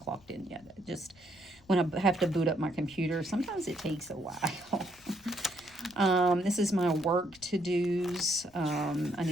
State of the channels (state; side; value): noise; left; rumble, 27 dB below the sound